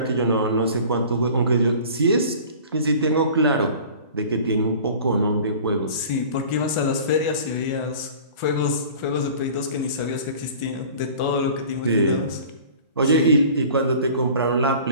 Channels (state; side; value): inverted; both; correlation -0.44